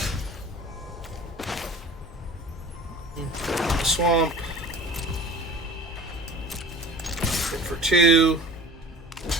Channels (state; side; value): normal; both; correlation 0.40